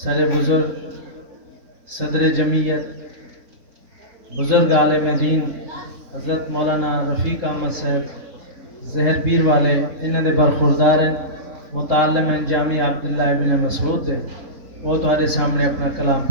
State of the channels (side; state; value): left; late; 3.8 ms